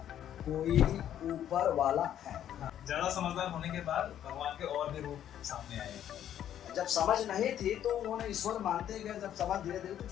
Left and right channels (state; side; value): quieter; right; 10.6 dB